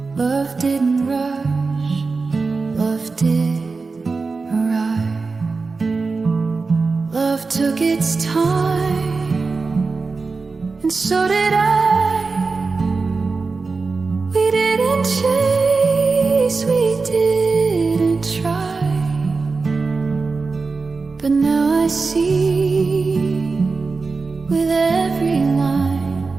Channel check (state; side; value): quieter; left; 4.2 dB